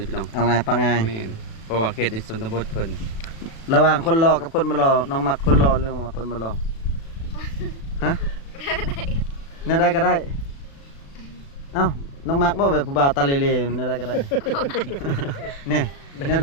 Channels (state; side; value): late; right; 36 ms